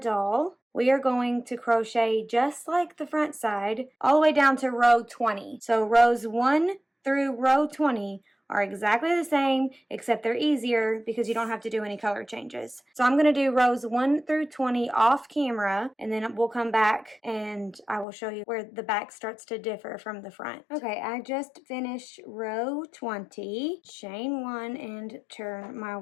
we are going to crochet just like the front side all the way down to row 20. So rows 1 through row 20 are exactly the same, except they're easier because you don't have to do any color changes. So I'm going to do rows 1 through 20 off camera, and then we'll come back and I will show you where the back starts to differ from the front. Okay, I just finished row 20, chain 1, and turn my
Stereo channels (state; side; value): drops out; right; at 18.1 s